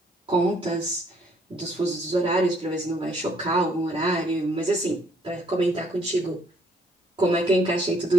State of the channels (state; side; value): normal; both; correlation 0.65